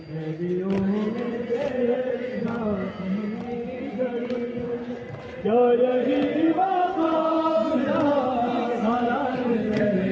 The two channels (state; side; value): identical; both; correlation 1.00